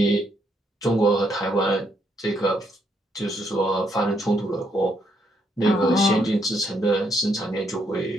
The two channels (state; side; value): normal; both; correlation 0.75